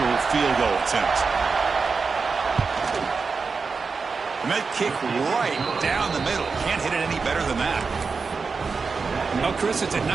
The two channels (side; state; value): left; quieter; 4.8 dB